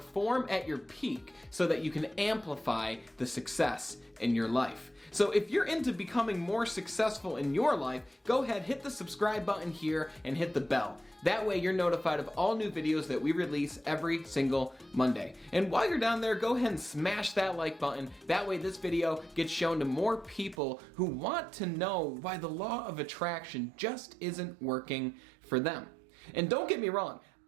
at your peak so that you can amplify the success in your life. So if you're into becoming more successful in your life, go ahead, hit the subscribe button here and hit the bell. That way you're notified of all new videos that we release every single Monday. And while you're down there, go ahead and smash that like button. That way this video gets shown to more people who want to know why the law of attraction just isn't working for them. And don't get me wrong,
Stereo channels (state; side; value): drops out; left; at 20.6 s